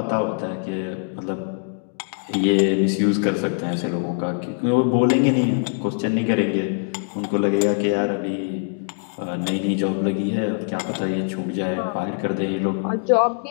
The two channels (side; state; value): right; silent; digital silence